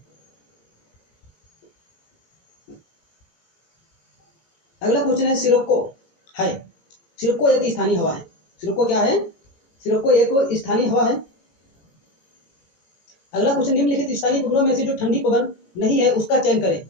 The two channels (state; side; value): late; right; 18 ms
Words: अगला क्वेश्चन है सिरोको है। सिरोको एक स्थानीय हवा है। सिरोको क्या है? सिरोको एक स्थानीय हवा है। अगला क्वेश्चन निम्नलिखित स्थानीय पवनों में से जो ठंडी पवन नहीं है उसका चयन करें।